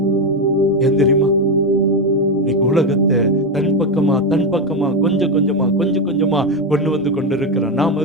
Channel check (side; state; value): both; normal; correlation 0.10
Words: ஏன் தெரியுமா? இன்னைக்கு உலகத்தை தன் பக்கமா கொஞ்சம் கொஞ்சமா கொண்டு வந்து கொண்டிருக்கிறான். நாம்